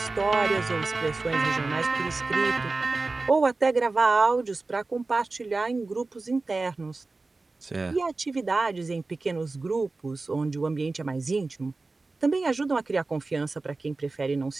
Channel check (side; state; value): left; quieter; 3.6 dB